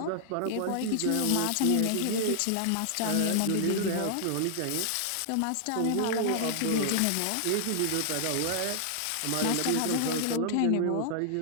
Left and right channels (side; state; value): both; different; correlation 0.00